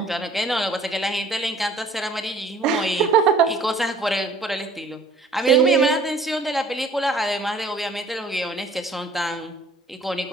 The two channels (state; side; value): quieter; left; 3.1 dB